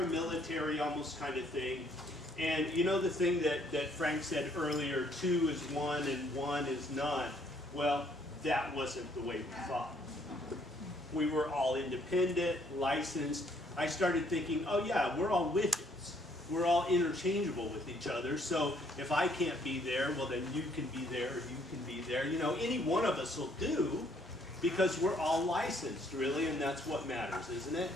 almost kind of thing. And you know the thing that Frank said earlier, 2 is 1 and 1 is none. Well, that wasn't the way we thought. We were all independent, licensed. I started thinking, oh yeah, we're all widgets. We're all interchangeable with each other. So if I can't be there, well then you can be there, or you can be there. You know, any one of us will do, because we're all licensed, really, and that's what matters, isn't it?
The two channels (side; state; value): both; normal; correlation 0.66